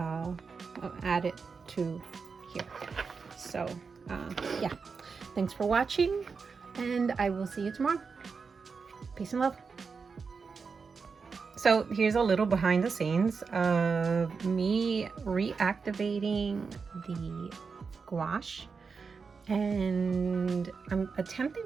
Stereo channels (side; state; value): left; quieter; 5.2 dB